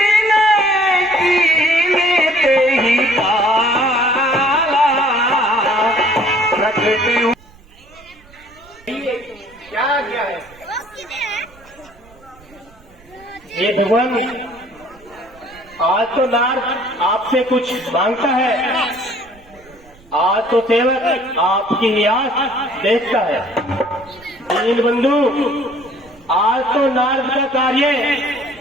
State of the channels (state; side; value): noise; right; rumble, 26 dB below the sound